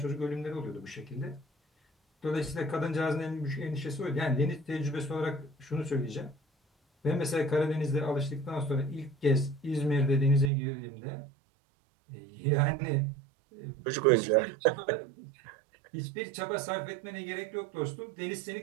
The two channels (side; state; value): left; drops out; at 10.5 s